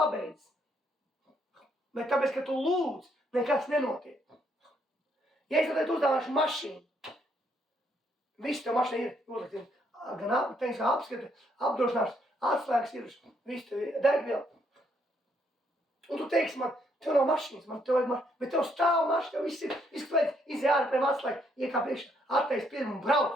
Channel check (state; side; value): normal; both; correlation 0.72